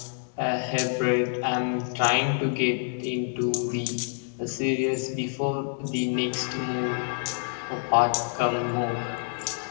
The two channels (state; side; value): silent; right; 60 dB below the other